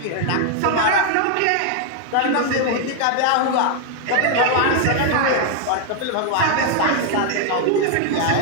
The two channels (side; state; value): both; different; correlation 0.00